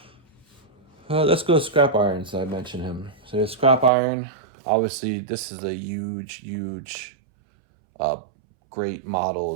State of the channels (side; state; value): left; drops out; at 3.9 s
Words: Let's go to scrap iron. So I mentioned him. So scrap iron. Obviously, this is a huge, great